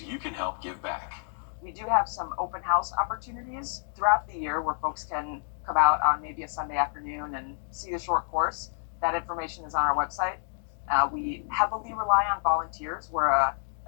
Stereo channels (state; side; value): silent; right; digital silence